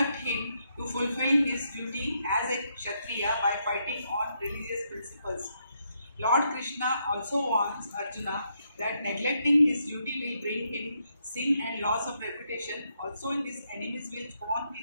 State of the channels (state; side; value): inverted; both; correlation -0.78